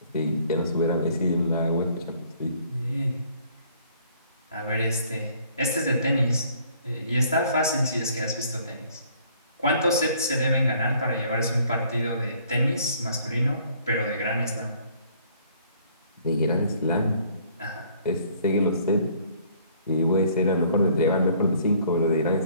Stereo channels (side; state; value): both; inverted; correlation -0.60